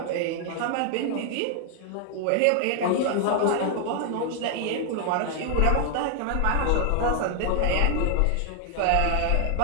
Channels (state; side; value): different; both; correlation 0.00